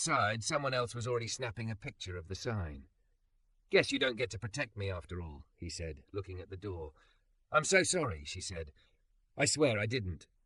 someone else was already snapping a picture of the sign. "Guess you don't get to protect me after all," he said, looking at the door. "I'm so sorry," she said. "I swear I didn't.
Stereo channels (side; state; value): both; identical; correlation 1.00